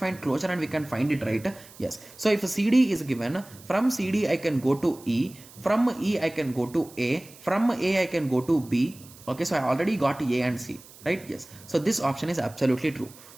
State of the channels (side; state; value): right; noise; hiss, 21 dB below the sound